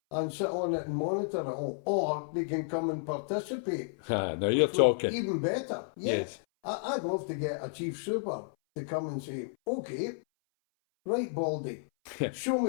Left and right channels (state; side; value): silent; right; 57 dB below the other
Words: and sit on it and monitor it all. Or they can come and participate. Now you're talking. Even better. Yeah. Yes. I'd love to get a chief super to come and say, okay, right, Baldy, show